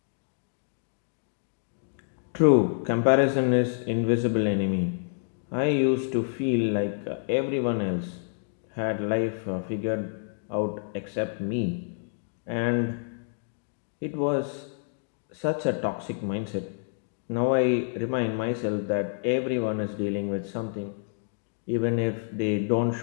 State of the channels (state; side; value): silent; right; digital silence